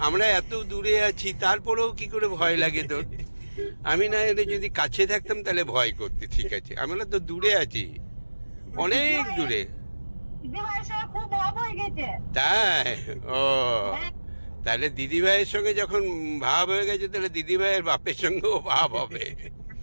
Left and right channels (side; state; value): both; inverted; correlation -1.00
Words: আমরা এত দূরে আছি তারপরেও কি করে ভয় লাগে তোর? আমি না এলে যদি কাছে থাকতাম তাহলে ভয় করতে, ঠিক আছে, আমরা তো দূরে আছি, অনেক দূরে। খুব ভাব হয়ে গেছে। তাই? ও, তাহলে দিদি ভাইয়ের সঙ্গে যখন ভাব হয়ে গেছে তাহলে দিদি ভাইয়ের বাপের সঙ্গেও ভাব হবে।